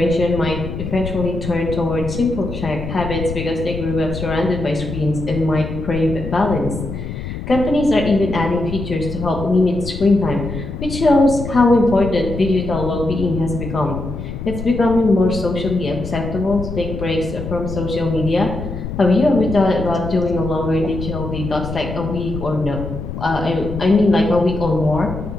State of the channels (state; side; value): noise; left; rumble, 7 dB below the sound